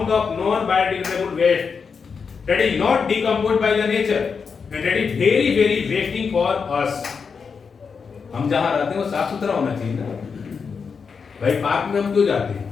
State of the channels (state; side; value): quieter; right; 5.7 dB